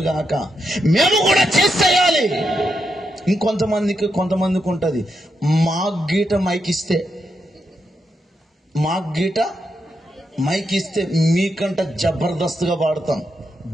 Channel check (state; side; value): normal; both; correlation 0.83